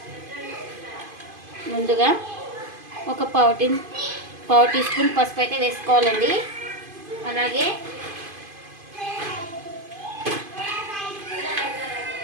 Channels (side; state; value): left; late; 2.5 ms